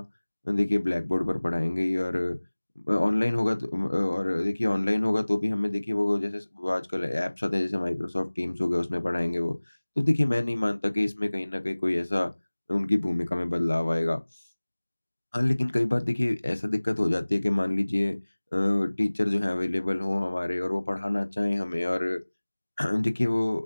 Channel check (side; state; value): both; inverted; correlation -1.00